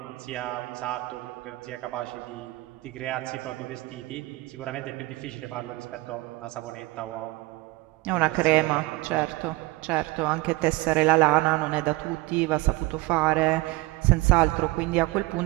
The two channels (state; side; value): quieter; left; 21.5 dB